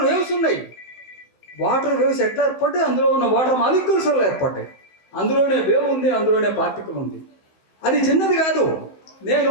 వేవ్స్ ఉన్నాయి. వాటర్ వేవ్స్ ఎట్లా ఏర్పడ్డాయి? అందులో ఉన్న వాటర్ మాలిక్యూల్స్ వల్ల ఏర్పడ్డాయి. అందులోనే వేవ్ ఉంది, అందులోనే పార్టికల్ ఉంది. అది చిన్నది కాదు. నేను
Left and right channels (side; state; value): right; late; 16 ms